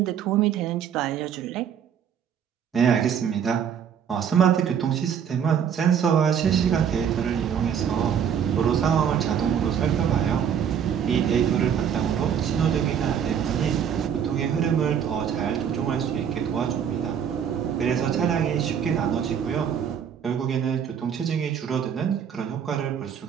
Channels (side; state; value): left; quieter; 8.2 dB